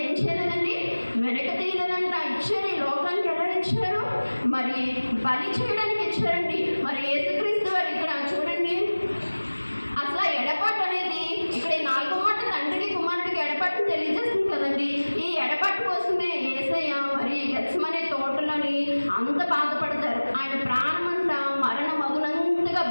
ఏం చేయలేదండి? వెనక తీయలేదంట. ఇచ్చారు. ఈ లోకానికి ఎలా ఇచ్చారు? మరి బలి చేయడానికి ఇచ్చారండి. మరి యేసుక్రీస్తు వారు ఇక్కడ చూడండి, అసలు ఎడపాటు అనేది ఇక్కడ 4వ మాట తండ్రికి కుమారుడికి ఎడపాటుని తెలియజేస్తుంది కదండి. ఈ ఎడపాటు కోసమే యేసయ్య మరి గెత్సెమనే తోటలోని అంత బాధపడతారు. ఆయన ప్రాణమంట మరణ మగునంతగా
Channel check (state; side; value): inverted; both; correlation -1.00